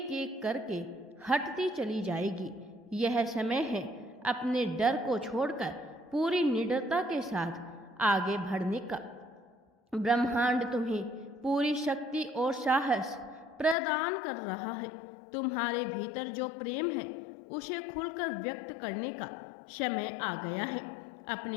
एक करके हटती चली जाएगी। यह समय है अपने डर को छोड़कर पूरी निडरता के साथ आगे बढ़ने का। ब्रह्मांड तुम्हें पूरी शक्ति और साहस प्रदान कर रहा है। तुम्हारे भीतर जो प्रेम है उसे खुलकर व्यक्त करने का समय आ गया है।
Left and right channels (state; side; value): drops out; right; at 13.8 s